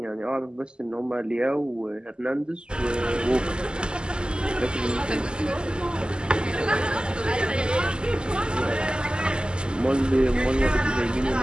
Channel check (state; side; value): late; left; 0.048 ms